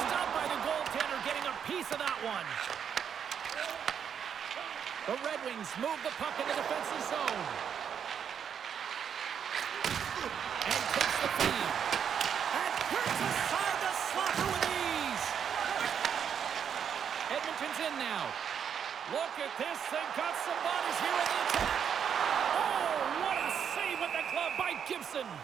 by the goaltender, getting a piece of that one. The Red Wings move the puck in the defensive zone. And takes the feed. And hits aside the slapper with ease. Edmonton's in now. Look at this. They've got some bodies here in the attack. Oh, what a save with the glove by Gibson.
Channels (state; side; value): quieter; left; 7.9 dB